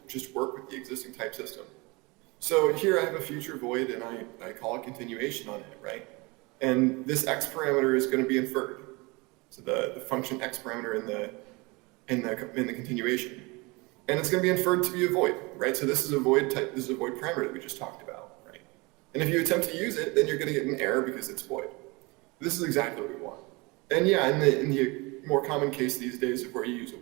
work with the existing type system. So here I have a future void, and I call a continuation on it, right? And this x parameter is going to be inferred. So the function x parameter in the continuation, and it's going to be inferred to be a void, right? So this is a void type. This is a void parameter that we just talked about, right? And if you attempt to use it, then you're going to get an error because it's void. This is exactly what we want. And yeah, in the more common case these days of where you use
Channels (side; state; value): left; quieter; 25.8 dB